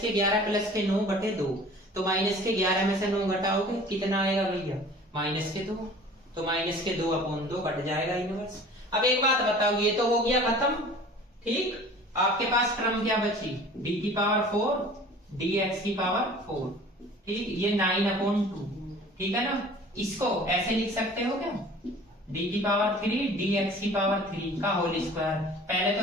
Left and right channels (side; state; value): both; normal; correlation 0.45